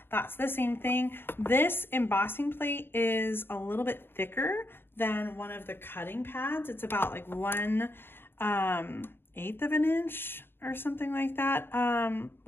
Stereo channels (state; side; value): late; right; 0.11 ms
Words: that's the same thing. This embossing plate is a little bit thicker than one of the cutting pads. It's about like 1/8 of an inch or something like that,